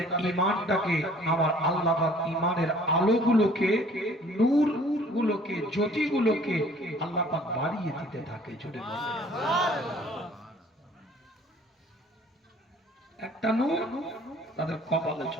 ঈমানটাকে, আমার আল্লাহ পাক ঈমানের আলোগুলোকে, নূরগুলোকে, জ্যোতিগুলোকে আল্লাহ পাক বাড়িয়ে দিতে থাকে। জোরে বলে একটা নূর তাদের কপালে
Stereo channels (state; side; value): normal; both; correlation 0.54